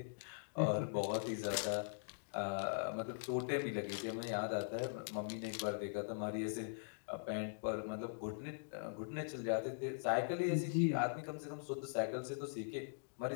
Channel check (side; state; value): right; silent; digital silence